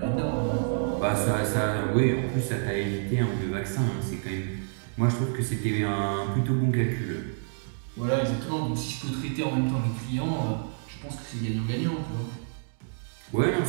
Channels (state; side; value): silent; left; digital silence